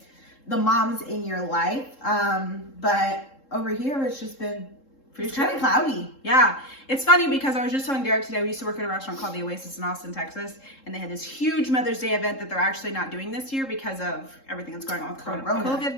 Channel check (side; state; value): right; late; 3.7 ms